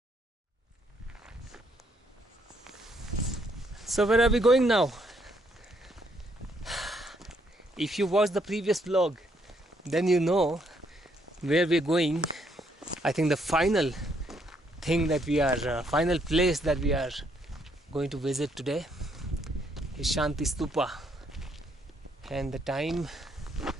So where are we going now? If you watched the previous vlog, then you know where we're going. I think the final thing that we are, final place that we are going to visit today is Shanti Stupa. And the time,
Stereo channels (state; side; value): normal; both; correlation 0.71